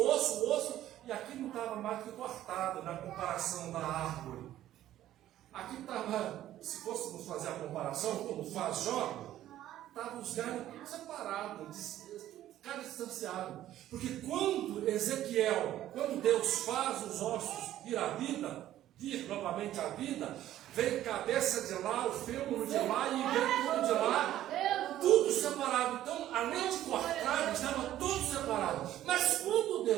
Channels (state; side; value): quieter; left; 13.0 dB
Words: osso, e aqui não estava mais que cortado na comparação da árvore. Aqui estava, se fôssemos fazer a comparação, como faz Jó, estavam os galhos separados, cada distanciado. Porque quando Deus faz os ossos vir novamente à vida, vem cabeça de lá, o fêmur de lá e vem tudo de lá, tudo separado. Então, além de cortado, estava tudo separado. Mas quando